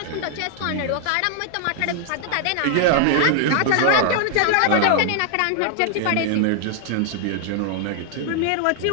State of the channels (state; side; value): different; both; correlation 0.00